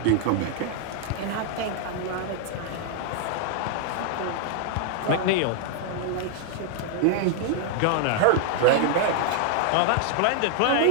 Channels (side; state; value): both; different; correlation 0.00